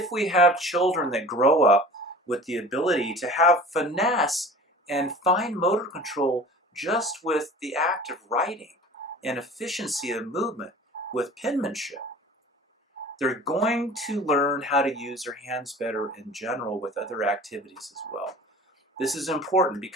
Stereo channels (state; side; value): normal; both; correlation 0.42